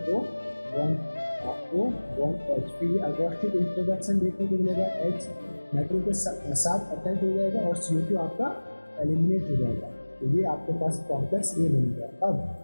O1H, फिर ये अगोस्टिक इंट्रोडक्शन देखने को मिलेगा, H मेटल के साथ अटैच हो जाएगा और CO2 आपका एलिमिनेट हो जाएगा, तो ये आपके पास कॉम्प्लेक्स ये बनेगा। अब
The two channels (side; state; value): both; inverted; correlation -1.00